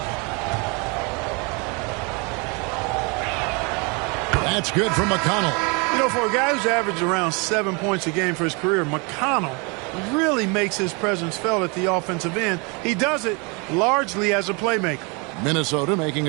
That's good from McConnell. You know, for a guy who's averaged around 7 points a game for his career, McConnell really makes his presence felt at the offensive end. He does it largely as a playmaker. Minnesota making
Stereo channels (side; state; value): left; quieter; 30.8 dB